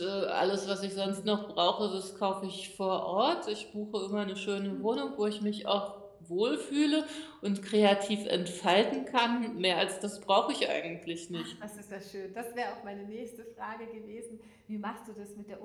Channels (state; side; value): identical; both; correlation 1.00